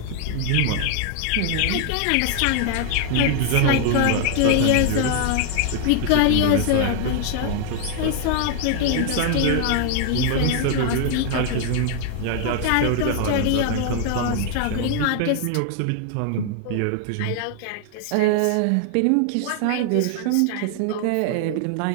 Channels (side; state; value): both; different; correlation 0.00